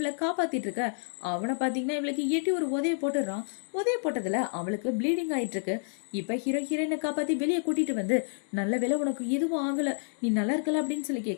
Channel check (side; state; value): right; silent; digital silence